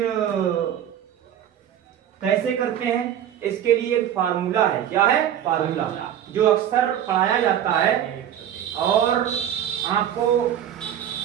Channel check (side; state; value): left; quieter; 10.2 dB